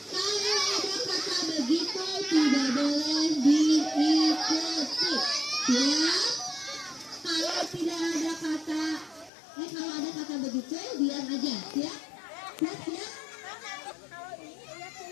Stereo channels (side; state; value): right; drops out; at 9.3 s